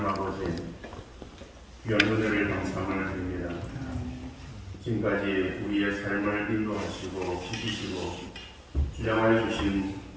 아버지, 귀한 은혜를 감사함을 드립니다. 지금까지 우리의 삶을 인도하시고 지키시고 주장하여 주신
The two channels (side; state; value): both; identical; correlation 1.00